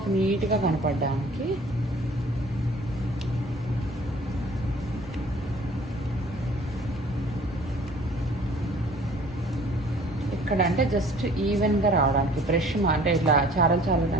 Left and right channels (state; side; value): normal; both; correlation 0.52